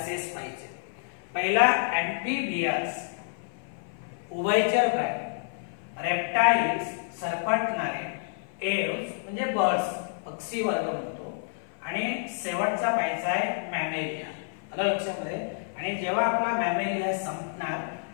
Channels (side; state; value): right; silent; 56 dB below the other